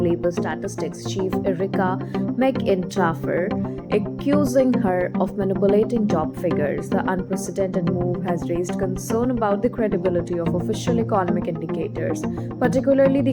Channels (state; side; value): identical; both; correlation 1.00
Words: Statistics chief Erika McEntarfer, accusing her of manipulating job figures. The unprecedented move has raised concern about the credibility of official economic indicators, particularly